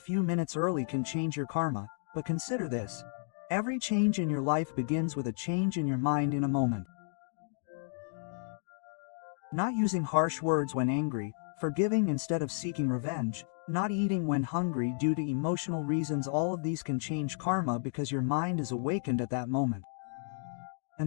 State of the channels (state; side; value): silent; right; digital silence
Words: minutes early can change your karma, but consider this. Every change in your life begins with a change in your mind in a moment. Not using harsh words when angry, forgiving instead of seeking revenge, not eating when hungry due to emotional reasons, all of these can change karma because your mind is awakened at that moment.